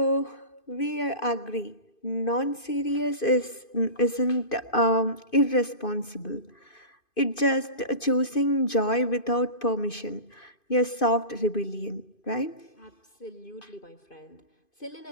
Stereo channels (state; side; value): late; right; 2.5 ms